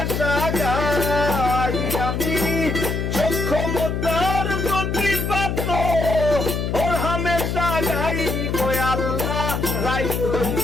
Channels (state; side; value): noise; left; hum, 1 dB below the sound